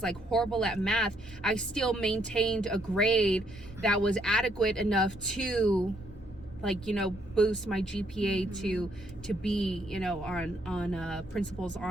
horrible at math, I still maintained a grade that was adequate enough to boost my GPA to be on principal's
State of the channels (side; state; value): both; normal; correlation 0.71